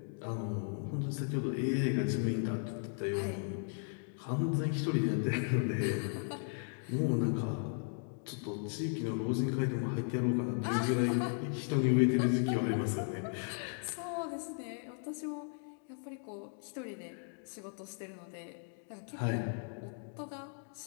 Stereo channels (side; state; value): right; silent; 54 dB below the other